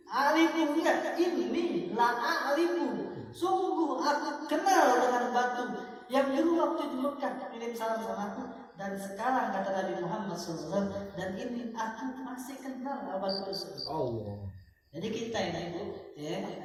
Alifu enggak, ini la alifu. Sungguh aku kenal dengan batu yang dulu waktu di Mekah kirim salam sama aku, dan sekarang kata Nabi Muhammad SAW, dan ini aku masih kenal batu tersebut. Allah. Jadi kita ini Bu, ya,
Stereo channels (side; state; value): both; identical; correlation 1.00